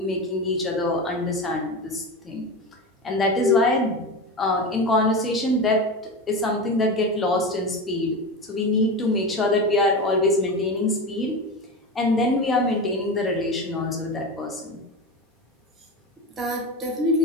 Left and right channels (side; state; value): both; normal; correlation 0.23